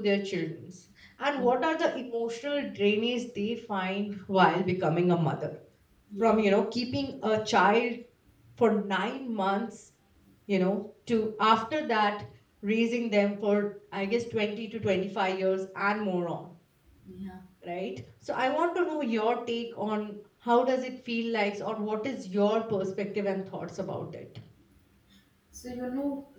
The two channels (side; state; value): both; identical; correlation 1.00